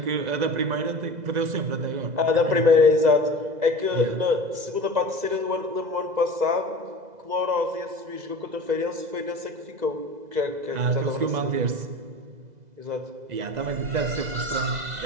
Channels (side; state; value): left; late; 2.0 ms